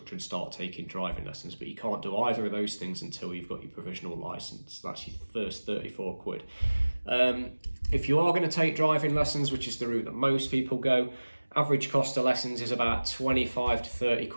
and start taking driving lessons. But you can't do either of those things until you've got your provisional licence. That's your first 34 quid. If you are going to take driving lessons, which is the route that most people go, average cost of lessons is about 25 to 30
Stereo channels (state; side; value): inverted; both; correlation -1.00